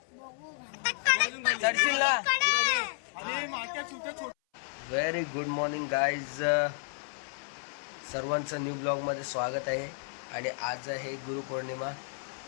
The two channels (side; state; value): right; silent; 57 dB below the other